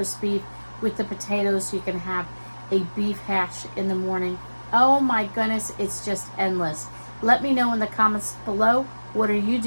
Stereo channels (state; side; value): inverted; both; correlation -1.00